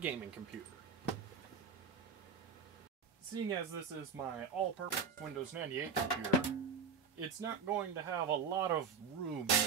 gaming computer. Seeing as this is my all-purpose Windows 98 computer, it's not going to have a lot of room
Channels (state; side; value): quieter; left; 5.6 dB